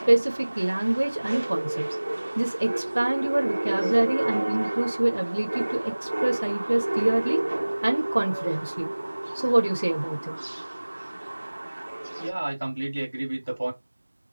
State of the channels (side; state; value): both; inverted; correlation -1.00